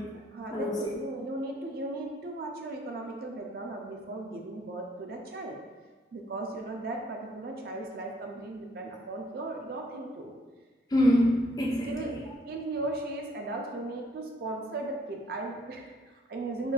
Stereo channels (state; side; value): normal; both; correlation 0.64